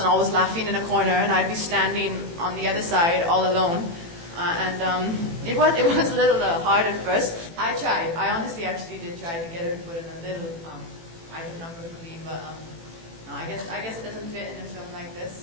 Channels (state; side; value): late; left; 18 ms